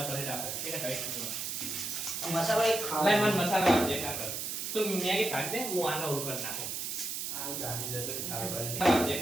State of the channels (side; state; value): right; noise; hiss, 3 dB below the sound